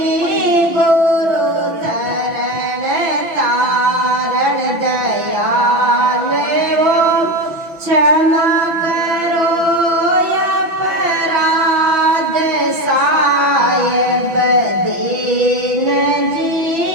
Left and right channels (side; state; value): left; late; 5.9 ms